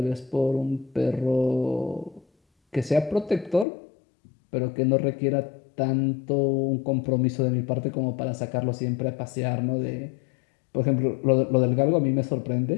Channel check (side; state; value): right; drops out; at 3.7 s